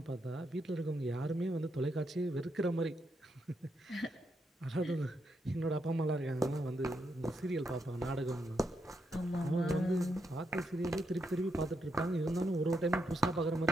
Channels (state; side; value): normal; both; correlation 0.81